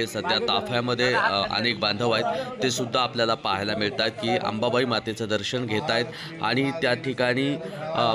सध्या ताफ्यामध्ये अनेक बांधव आहेत ते सुद्धा आपल्याला पाहायला मिळतात की अंबाबाई मातेचं दर्शन घेत आहेत आणि त्या ठिकाणी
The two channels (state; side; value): identical; both; correlation 1.00